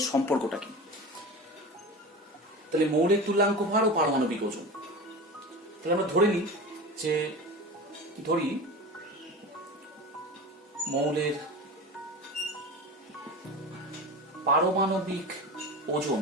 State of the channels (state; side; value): normal; both; correlation 0.30